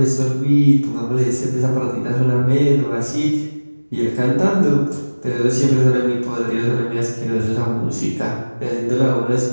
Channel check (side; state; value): both; inverted; correlation -1.00